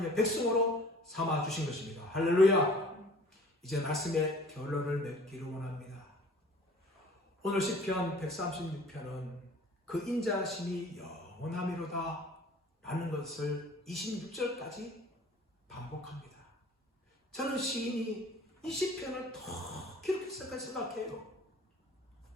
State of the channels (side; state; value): both; normal; correlation 0.49